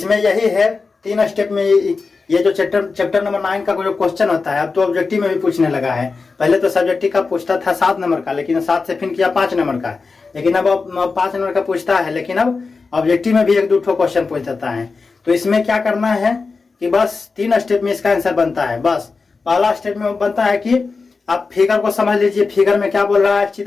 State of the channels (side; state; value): right; quieter; 4.4 dB